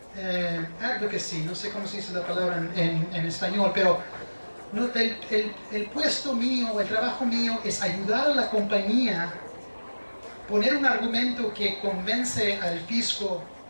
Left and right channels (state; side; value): inverted; both; correlation -1.00